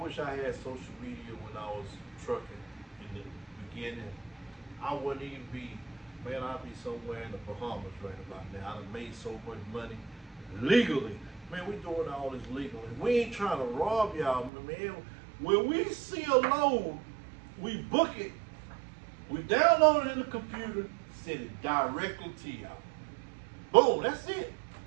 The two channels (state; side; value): drops out; left; at 14.5 s